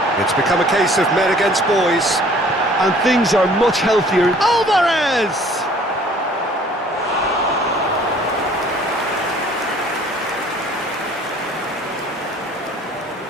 It's become a case of men against boys. And things are much healthier. Alvarez!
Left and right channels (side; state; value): both; normal; correlation 0.54